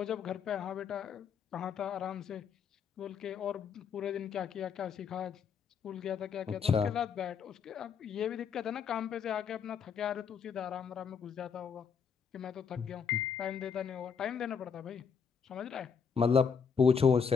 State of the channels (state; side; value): quieter; right; 6.5 dB